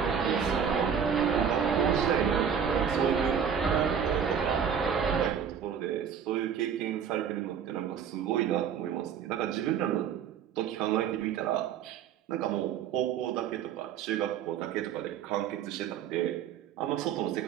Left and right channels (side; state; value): left; quieter; 7.7 dB